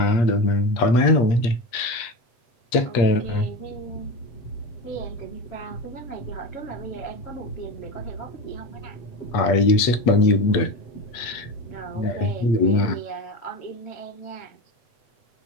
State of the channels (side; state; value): right; late; 8.5 ms